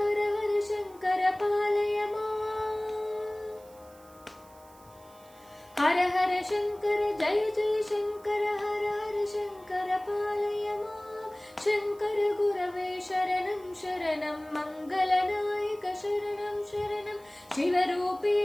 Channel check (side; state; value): right; noise; hiss, 26 dB below the sound